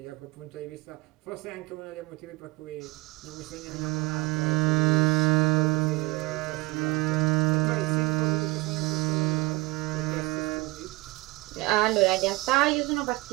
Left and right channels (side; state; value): left; quieter; 22.4 dB